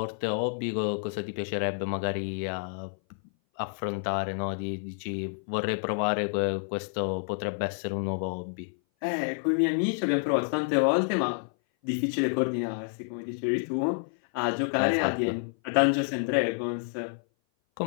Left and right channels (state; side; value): silent; right; 57 dB below the other